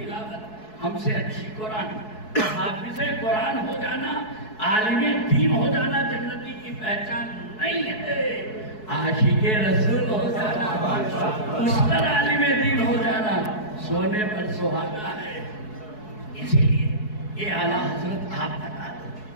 ہم سے اچھی قرآن. حافظ قرآن ہو جانا، عالم دین ہو جانا جنتی کی پہچان نہیں ہے. عاشق رسول ہو جانا، اس پر عالم دین ہو جانا سونے پر سہاگا ہے. اسی لیے یہ اعلیٰ حضرت آپ بتا دو،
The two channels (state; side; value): late; right; 4.7 ms